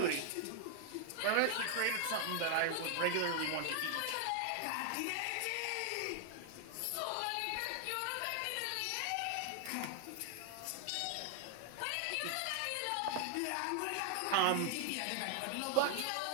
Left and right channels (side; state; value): both; different; correlation 0.00